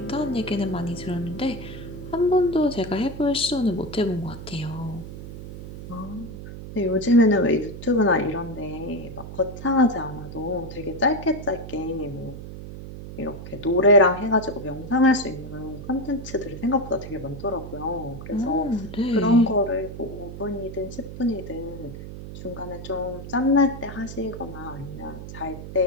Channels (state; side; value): noise; right; hum, 11 dB below the sound